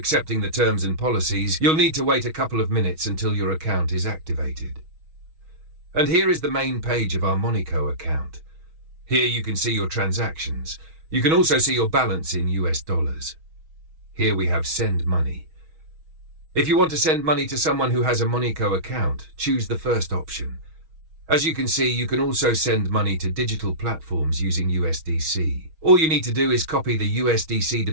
the terms and policies, you'll need to wait a couple of minutes until your account is activated. And here is the main page of our MoniCo account. Here you can see your transactions. You can also see your balance in US dollars. Here we have Send Money. If you want to send money to someone who has a MoniCo account, choose the first option. As you can see, you can also send money to digital platforms using USDC. All you need to do is copy the USDC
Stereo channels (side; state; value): left; late; 6.3 ms